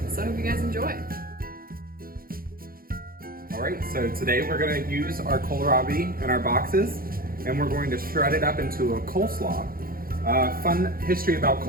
So I hope you guys enjoy. Alright, so today we're going to use our Kohlrabi in our boxes, and we're going to shred it up into a coleslaw. Fun history about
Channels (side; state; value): left; late; 0.42 ms